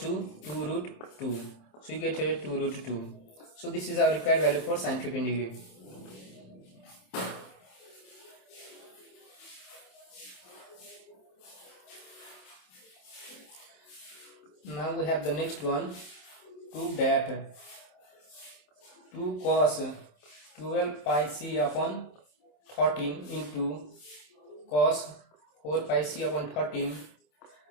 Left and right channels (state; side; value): late; right; 27 ms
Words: 2 root 2. So you get here 2 root 2. So this is our required value for sin 15 degree. Now we have the next one. Prove that 2 cos 12 pi c upon 13 into cos 4 pi c upon 13